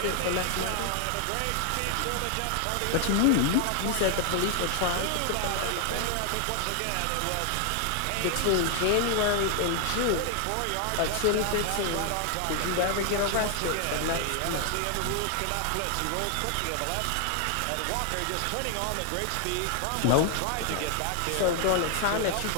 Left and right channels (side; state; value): both; different; correlation 0.00